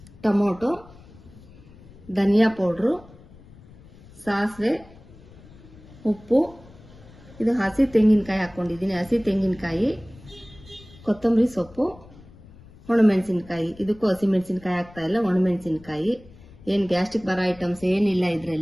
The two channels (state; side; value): noise; left; rumble, 22 dB below the sound